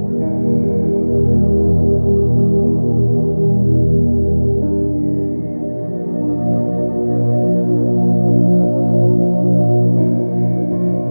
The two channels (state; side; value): inverted; both; correlation -1.00